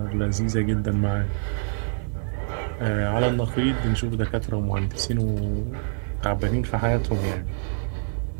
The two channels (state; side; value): silent; left; 59 dB below the other